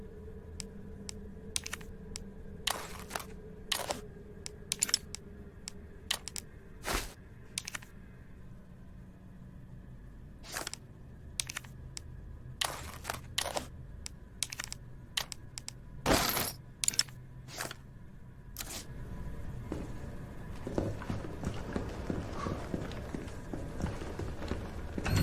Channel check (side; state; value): both; identical; correlation 1.00